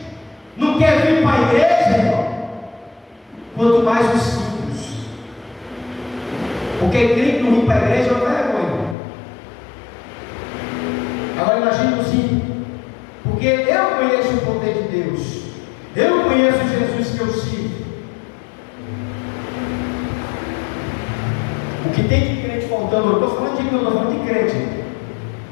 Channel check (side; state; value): right; drops out; at 9.0 s